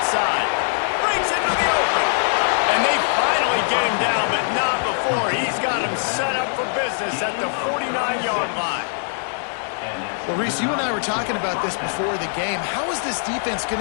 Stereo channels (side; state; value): right; silent; digital silence